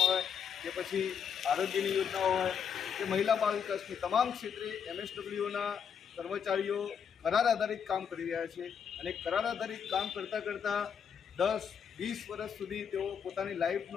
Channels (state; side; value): quieter; right; 7.4 dB